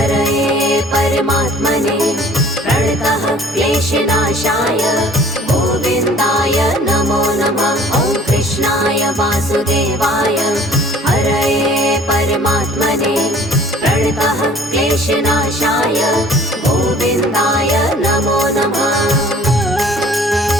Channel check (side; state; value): both; normal; correlation 0.51